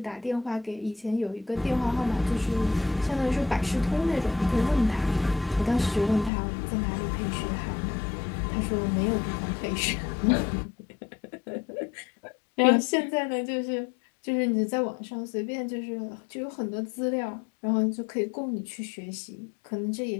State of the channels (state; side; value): drops out; right; at 6.3 s